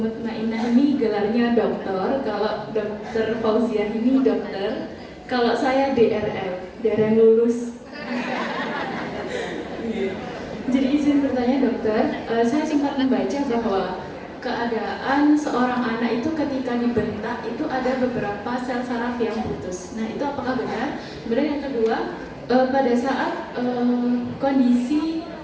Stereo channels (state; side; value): identical; both; correlation 1.00